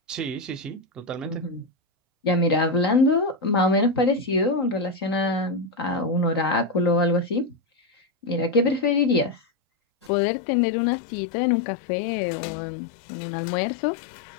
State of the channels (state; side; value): drops out; right; at 10.1 s